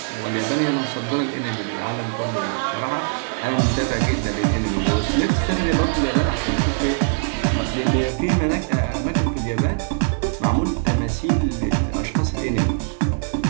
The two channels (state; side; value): silent; left; 64 dB below the other